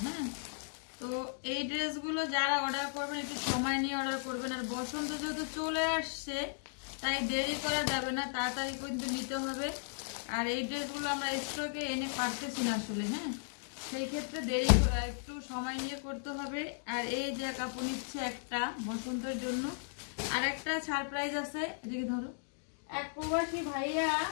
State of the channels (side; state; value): right; silent; digital silence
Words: হ্যাঁ, তো এই ড্রেসগুলো যারা অর্ডার করবেন একটু সময় নিয়ে অর্ডার করবেন। আর বসন্ত যেহেতু চলে আসছে তাই দেরি করা যাবে না, তাড়াতাড়ি কিন্তু নিতে হবে। আর এই ড্রেসগুলো আমরা স্টকে এনে পারতেছি না আসলে। হ্যাঁ, সেই ক্ষেত্রে দেরি একটু সময় নিয়ে করতে হবে। আর এই যে কাপড় নিচ্ছে একটা বসন্তের জন্য, আর একটা সারপ্রাইজ আছে, এদিকে ধরো। এক প্রবাসী ভাইয়া,